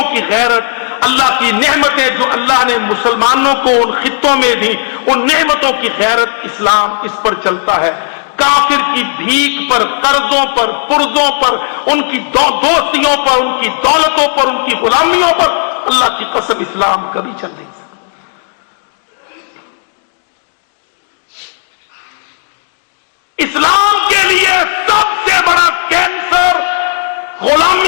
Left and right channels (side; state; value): right; silent; digital silence